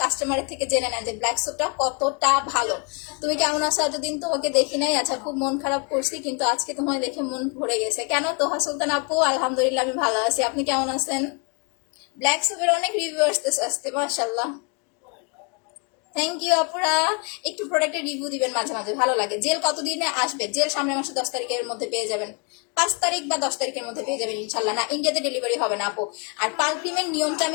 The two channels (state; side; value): quieter; right; 35.7 dB